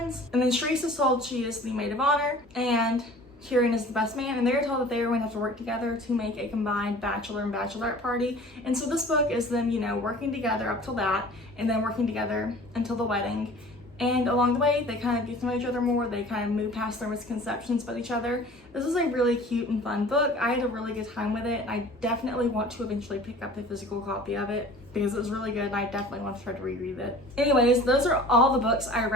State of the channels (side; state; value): both; normal; correlation 0.45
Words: And then Sharice is told she is the maid of honor and Kieran is the best man, and they're told that they are going to have to work together to make a combined bachelor and bachelorette party. And so this book is them, working together up till that, and then working together until the wedding. And along the way, they kind of get to know each other more. They kind of move past their misconceptions about each other. This is a really cute and fun book. I had a really good time with it, and I definitely want to eventually pick up a physical copy of it because it was really good, and I definitely want to try to reread it. Anyways, those are all the books I